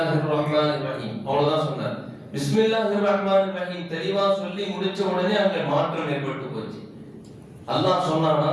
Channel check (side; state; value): both; identical; correlation 1.00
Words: ரஹ்மானிர் ரஹீம் அவ்வளவுதான் சொன்னார். பிஸ்மில்லாஹிர் ரஹ்மானிர் ரஹீம் தெளிவா சொல்லி முடிச்ச உடனே அங்க மாற்றம் ஏற்பட்டு போச்சு. அல்லாஹ்